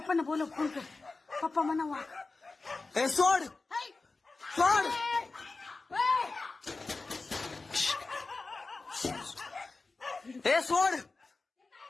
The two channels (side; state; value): right; quieter; 3.7 dB